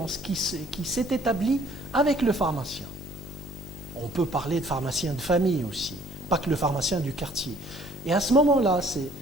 qui s'est établie avec le pharmacien. On peut parler de pharmacien de famille aussi, pas que le pharmacien du quartier. Et à ce moment-là,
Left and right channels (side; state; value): both; normal; correlation 0.58